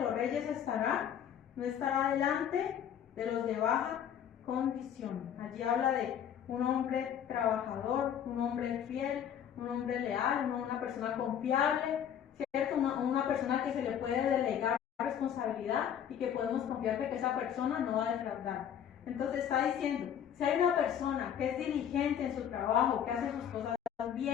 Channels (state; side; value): quieter; right; 9.2 dB